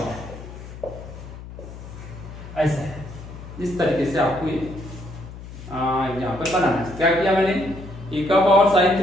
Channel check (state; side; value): noise; left; hum, 13 dB below the sound